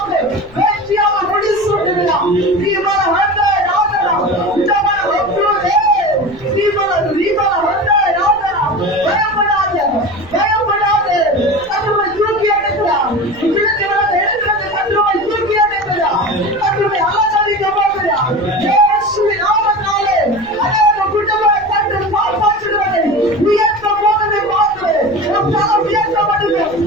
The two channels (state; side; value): noise; left; rumble, 23 dB below the sound